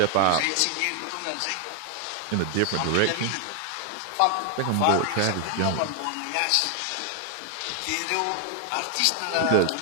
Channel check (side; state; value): both; different; correlation 0.00